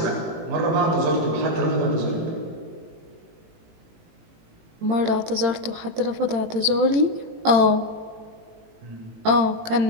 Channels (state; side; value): late; left; 18 ms